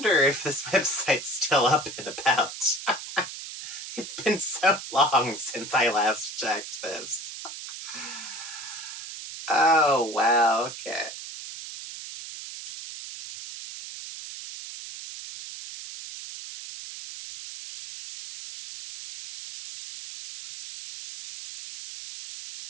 if this website's still up and about. It's been so long since I last checked this. Oh, wow, okay.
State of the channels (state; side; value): noise; right; hiss, 10 dB below the sound